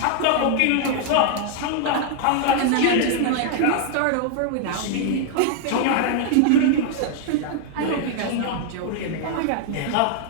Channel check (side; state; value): both; different; correlation 0.00